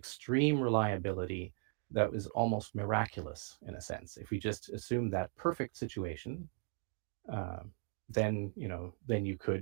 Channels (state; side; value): silent; left; 53 dB below the other